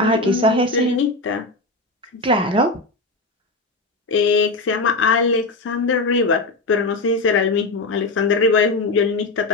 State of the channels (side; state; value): right; quieter; 3.1 dB